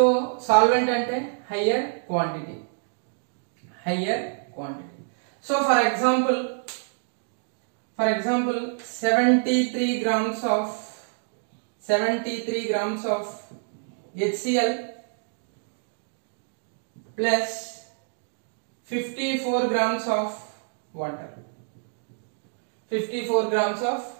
సాల్వెంట్ అంటే higher quantity. So for example 73 grams of HCl plus 54 grams of water.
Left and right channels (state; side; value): silent; left; digital silence